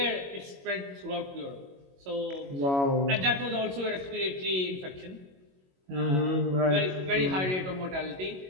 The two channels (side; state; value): left; late; 22 ms